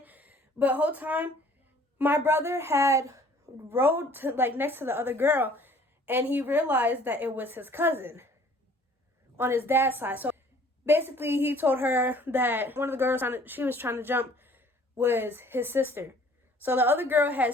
But the whole time, my brother had rode to, like, next to the other girl, and he realized that it was his cousin on his dad's side. So basically, he told her that one of the girls she was trying to jump was his sister. So the other girl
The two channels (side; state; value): both; normal; correlation 0.54